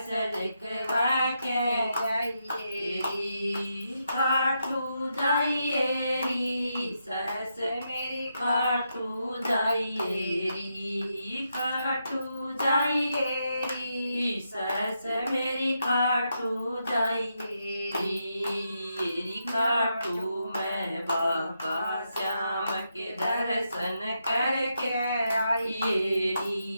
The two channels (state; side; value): inverted; both; correlation -0.82